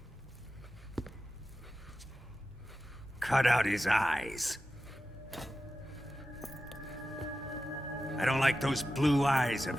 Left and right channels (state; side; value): normal; both; correlation 0.92